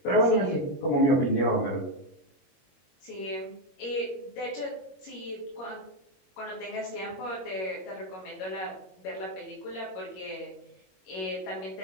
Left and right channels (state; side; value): late; right; 21 ms